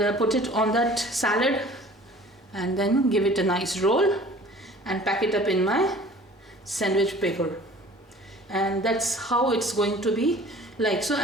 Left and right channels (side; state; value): both; normal; correlation 0.47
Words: put it on that salad, and then give it a nice roll and pack it up in my sandwich paper. And that's how it's going to be like. So